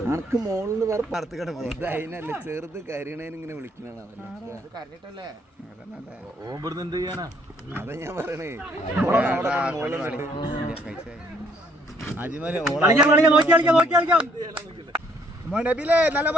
അനക്ക് മോളിന്ന് വേറെ പറത്ത് കട അതിനല്ല ചെറുത് കരീണേനിങ്ങനെ വിളിക്കണാണ് അതാ ഞാൻ പറയണേ. നല്ല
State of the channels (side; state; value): both; normal; correlation 0.66